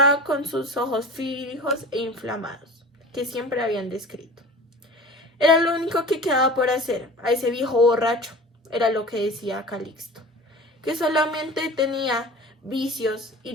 con sus ojos fijos e inflamados, que siempre habían descrito. Era lo único que quedaba por hacer a ese viejo borracho, era lo que decía Calixto, que solamente tenía vicios y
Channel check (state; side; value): normal; both; correlation 0.38